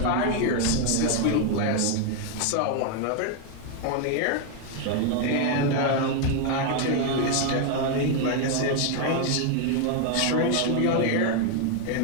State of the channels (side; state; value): both; different; correlation 0.01